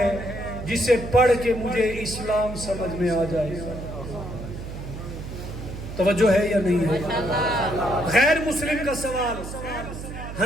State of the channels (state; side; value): noise; right; hum, 9 dB below the sound